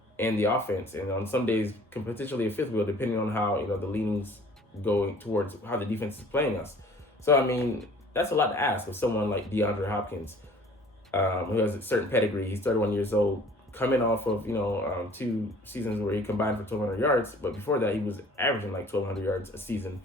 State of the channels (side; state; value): both; normal; correlation 0.51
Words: in the offense, and on some days potentially a fifth wheel, depending on how the leanings going towards how the defense is playing us. So I mean, that's a lot to ask of someone like DeAndre Hopkins, who has a certain pedigree. He's 31 years old, coming off of 2 seasons where he combined for 1,200 yards, but before that he was averaging like 1,200 yards a season.